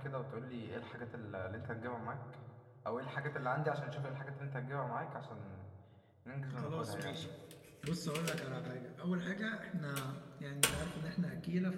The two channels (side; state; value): both; identical; correlation 1.00